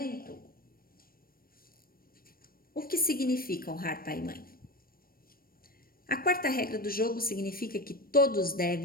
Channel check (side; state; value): right; late; 0.43 ms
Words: O que significa honrar pai e mãe? A quarta regra do jogo significa que todos